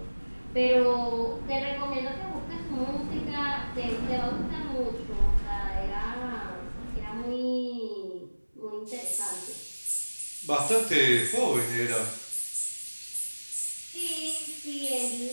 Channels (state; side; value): inverted; both; correlation -1.00